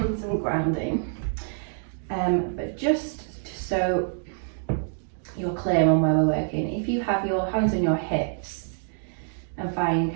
some grounding, but just so you're clear on where we're working, if you have your hands on your hips and find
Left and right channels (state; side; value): silent; left; digital silence